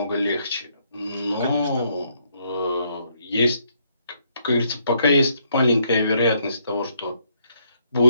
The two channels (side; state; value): both; inverted; correlation -0.72